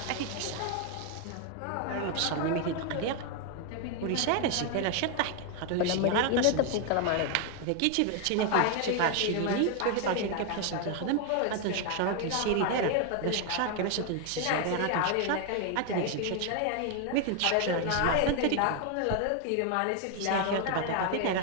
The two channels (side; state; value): both; different; correlation 0.00